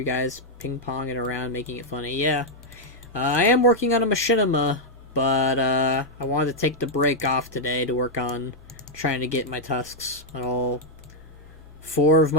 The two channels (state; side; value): normal; both; correlation -0.03